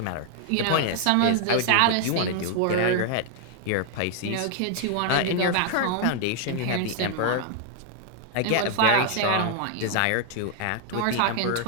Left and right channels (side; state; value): both; different; correlation 0.00